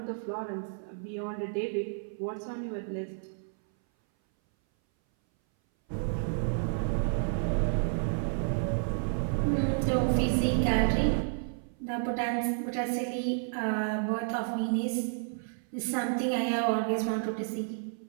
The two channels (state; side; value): silent; left; 57 dB below the other